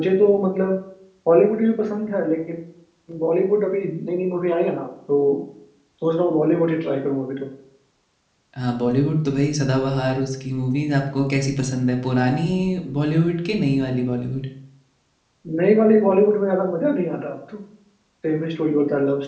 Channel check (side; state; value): both; identical; correlation 1.00